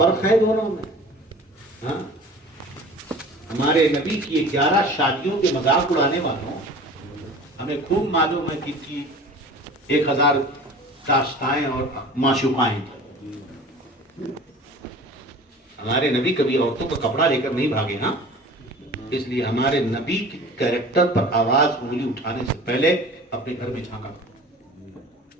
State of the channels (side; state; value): both; normal; correlation 0.42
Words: ہے دونوں میں. ہاں، ہمارے نبی کی 11 شادیوں کے مذاق اڑانے والوں ہمیں خوب معلوم ہے کہ 1000 داشتائیں اور معشوقائیں. ہمارے نبی کبھی عورتوں کا کپڑا لے کر نہیں بھاگے. ہاں اس لیے ہمارے نبی کے کیریکٹر پر آواز انگلی اٹھانے سے پہلے اپنے گھر میں جھانکا.